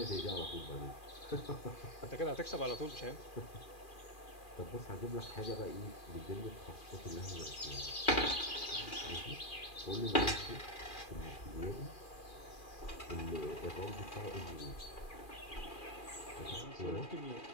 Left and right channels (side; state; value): right; late; 2.4 ms